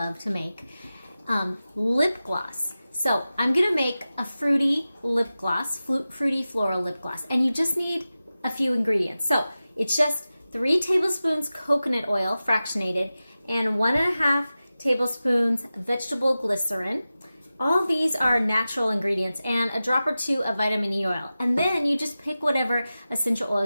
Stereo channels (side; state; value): both; inverted; correlation -0.95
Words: to make, lip gloss. So I'm gonna make a fruity lip gloss, fruity floral lip gloss, and you just need a few ingredients. So it's just 3 tablespoons coconut oil, fractionated, and 1.5 tablespoons vegetable glycerin. All these are natural ingredients, and a drop or 2 of vitamin E oil. And then you just pick whatever essential